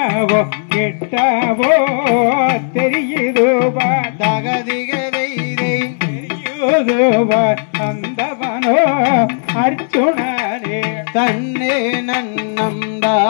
எட்டவோ தெரியுதோ தகதிகதைதை தெரியுதோ அந்தவனோ அர்ஜுனனே தன்னே நன்னம்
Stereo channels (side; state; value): right; silent; digital silence